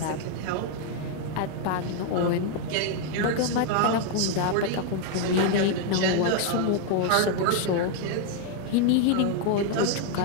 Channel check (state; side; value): different; both; correlation 0.00